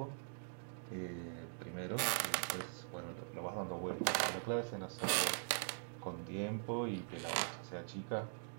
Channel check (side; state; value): left; silent; digital silence